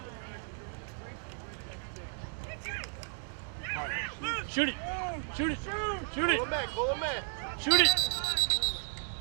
Shoot it. Shoot it. Shoot it. Pull him in. Shoot it.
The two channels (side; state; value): left; silent; 55 dB below the other